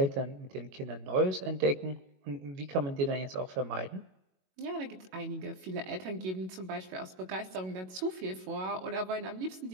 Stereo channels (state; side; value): late; left; 22 ms